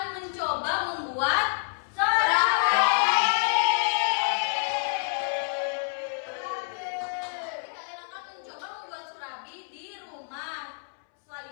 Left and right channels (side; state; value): right; silent; 60 dB below the other